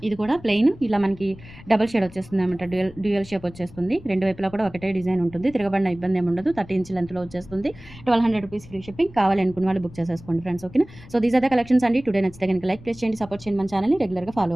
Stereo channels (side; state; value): left; noise; rumble, 19 dB below the sound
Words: ఇది కూడా ప్లెయిన్ ఇలా మనకి డబుల్ షేడ్ వచ్చేస్తుంది అనమాట. డ్యూయల్ షేప్ వచ్చేస్తుంది. రెండు వైపులా కూడా ఒకటే డిజైన్ ఉంటుంది. తిరగబడిన ఇబ్బంది ఏమి ఉండదు. 30 ఇంచ్ లెంత్‌లో వచ్చేస్తుంది. 1200 రూపీస్ ఫ్రీ షిప్పింగ్. కావాలి అనుకున్న వాళ్ళు బుక్ చేసేసుకోండి ఫ్రెండ్స్. ఓకేనా. So these are the collections అండి. టుడే నచ్చితే కనుక లైక్ ప్లేస్ చేయండి. సపోర్ట్ చేయండి మన ఛానల్‌ని. రెగ్యులర్‌గా ఫాలో